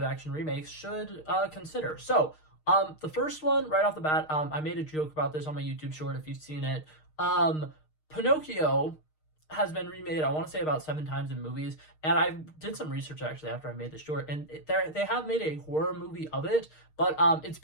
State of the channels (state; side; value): late; right; 6.5 ms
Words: action remakes, should consider. So the first one, right off the bat, I made a joke about this on my YouTube short if you've seen it. Pinocchio has been remade, I want to say, about 7 times in movies, and I did some research actually after I made the short, and they have made a horror movie of it, but it's